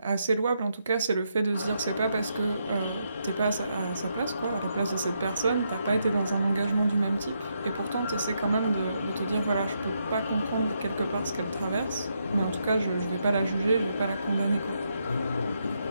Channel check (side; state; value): both; inverted; correlation -0.80